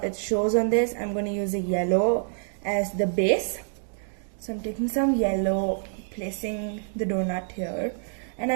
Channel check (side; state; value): left; silent; digital silence